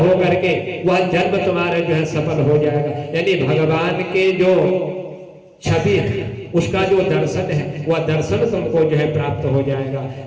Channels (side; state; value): both; identical; correlation 1.00